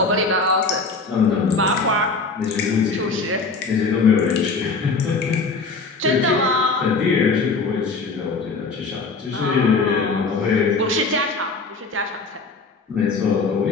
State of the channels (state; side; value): quieter; right; 4.1 dB